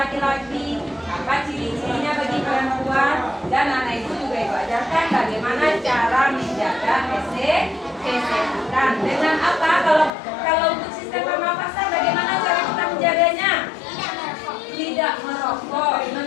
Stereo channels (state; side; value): drops out; right; at 10.1 s